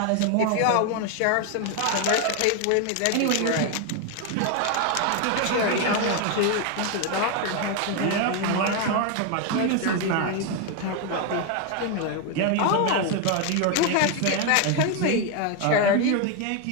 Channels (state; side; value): different; both; correlation 0.01